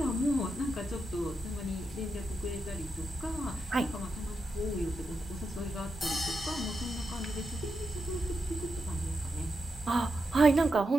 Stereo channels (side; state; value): both; normal; correlation 0.86